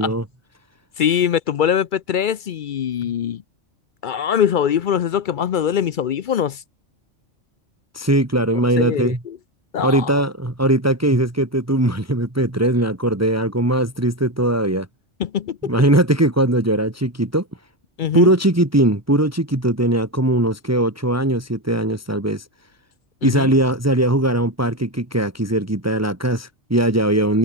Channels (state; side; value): normal; both; correlation 0.13